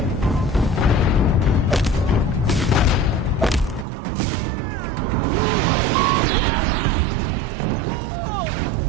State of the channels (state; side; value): drops out; left; at 3.9 s